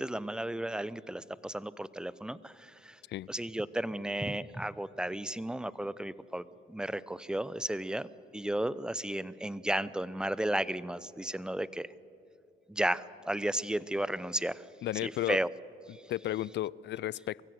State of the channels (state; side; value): normal; both; correlation 0.77